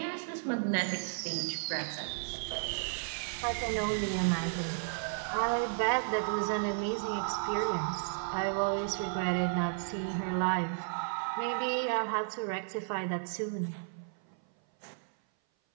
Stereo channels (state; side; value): silent; left; 55 dB below the other